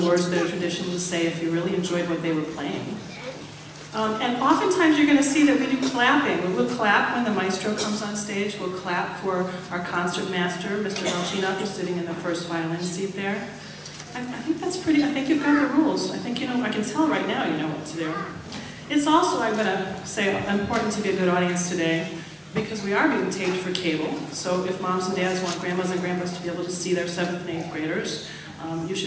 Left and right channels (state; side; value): identical; both; correlation 1.00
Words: words that are traditionally say if you really enjoyed what they were playing. And oftentimes you're going to see that we do clapping. We'll clap when the maestro comes on stage. We'll clap for our concert master, Mr. Velchinov, who's sitting in the first violin seat there. I think that's pretty, I think you've got the rules. I think you know, I can tell right now you know what to do. It's also, I'm going to say, important to be a good audience today because we are being taped for cable. So if moms and dads want grandmas and grandpas to be able to see their 7th and 8th graders, you